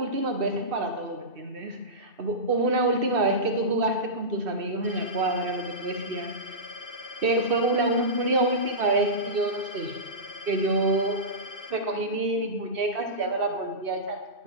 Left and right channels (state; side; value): late; left; 2.6 ms